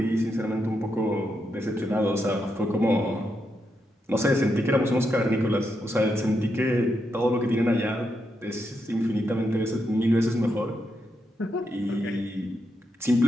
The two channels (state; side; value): normal; both; correlation 0.83